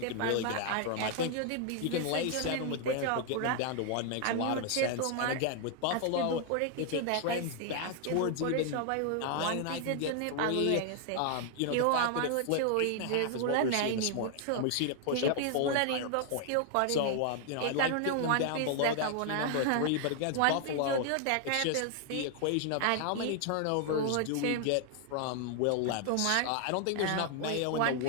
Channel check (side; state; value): both; different; correlation 0.00